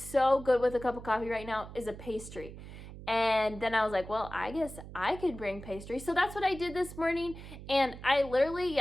good with a cup of coffee right now is a pastry. And then I was like, well, I guess I could bring pastry. So that's what I did this morning. And I literally,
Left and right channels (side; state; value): right; noise; hum, 13 dB below the sound